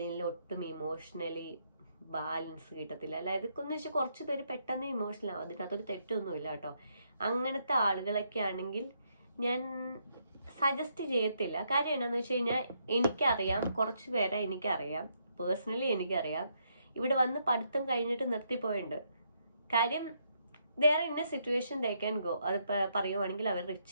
ഒട്ടും ഇമോഷണലി ബാലൻസ് കിട്ടത്തില്ല. അല്ല, ഇതൊക്കെന്ന് വെച്ചാൽ കുറച്ച് പേര് പെട്ടെന്ന് ഇമോഷണൽ ആവും, അതിനകത്തൊരു തെറ്റൊന്നുമില്ല കേട്ടോ. അങ്ങനത്തെ ആളുകളൊക്കെ ആണെങ്കിൽ ഞാൻ സജസ്റ്റ് ചെയ്യത്തില്ല. കാര്യം എന്താണെന്ന് വെച്ച് കഴിഞ്ഞാൽ എനിക്കറിയാം, കുറച്ച് പേരെ എനിക്കറിയാം, പേഴ്സണലി എനിക്കറിയാം, ഇവിടെ വന്ന് പഠിത്തം കഴിഞ്ഞിട്ട് നിർത്തിപ്പോയിട്ടുണ്ട്. കാര്യം വേറെ ഇന്ന സിറ്റുവേഷൻ ദേ ക്യാൻ ഗോ. അത് പറയുവാണെങ്കിൽ അവർ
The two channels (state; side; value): inverted; both; correlation -0.75